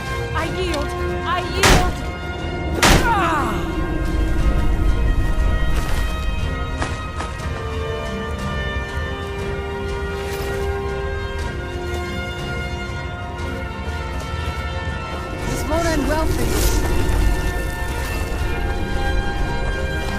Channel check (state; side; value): identical; both; correlation 1.00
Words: Won't end well for you.